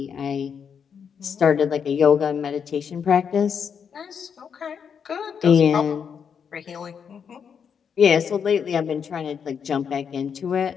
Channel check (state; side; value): quieter; right; 7.0 dB